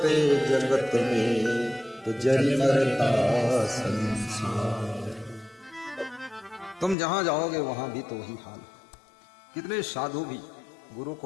जगत में तो जरी मरता संसार। तुम जहां जाओगे वहां भी तो वही हाल। कितने साधु भी गुरु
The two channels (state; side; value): drops out; right; at 7.0 s